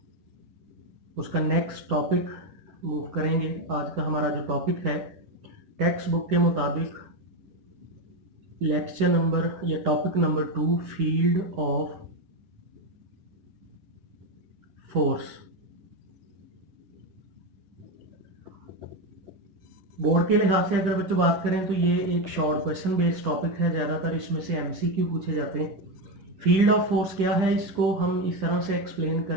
उसका नेक्स्ट टॉपिक मूव करेंगे। आज का हमारा जो टॉपिक है टेक्स्ट बुक के मुताबिक लेक्चर नंबर या topic number 2 field of force. Board के लिहाज से अगर बच्चों बात करें तो ये एक शॉर्ट क्वेश्चन बेस्ड टॉपिक है। ज़्यादातर इसमें से एमसीक्यू पूछे जाते हैं। फील्ड ऑफ फोर्स क्या है, इसको हम इस तरह से एक्सप्लेन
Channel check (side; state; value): left; late; 11 ms